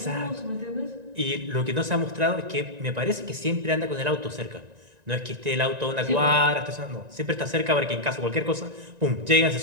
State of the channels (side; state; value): left; late; 1.9 ms